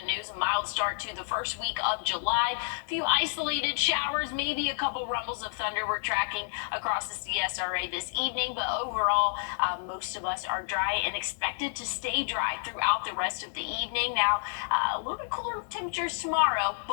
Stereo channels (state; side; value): silent; right; digital silence